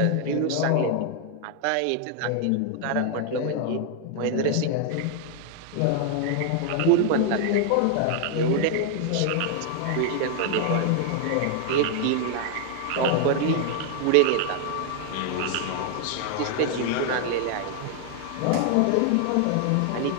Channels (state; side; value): different; both; correlation 0.00